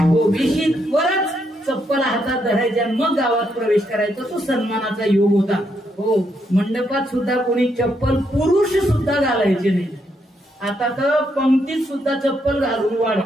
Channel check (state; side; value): normal; both; correlation 0.77